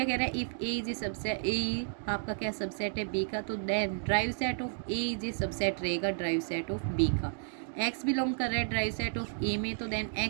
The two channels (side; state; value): left; silent; digital silence